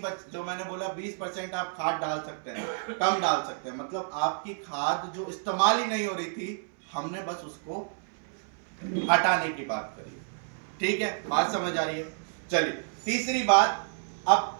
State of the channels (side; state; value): left; silent; 58 dB below the other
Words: जो मैंने बोला 20% आप खाद डाल सकते हैं, कम डाल सकते हैं, मतलब आपकी खाद जो इस्तेमाल ही नहीं हो रही थी, हमने बस उसको हटाने की बात करी, ठीक है? बात समझ आ रही है? चलिए तीसरी बात।